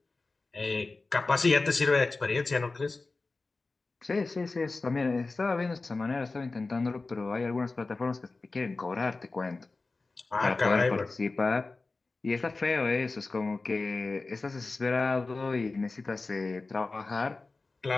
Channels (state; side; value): quieter; right; 3.6 dB